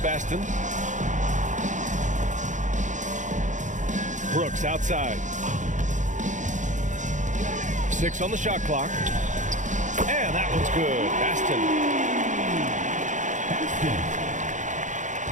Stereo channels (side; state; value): left; late; 0.36 ms